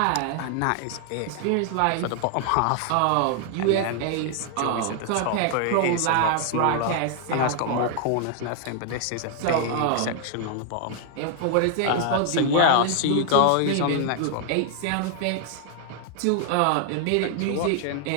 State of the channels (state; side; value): different; both; correlation 0.00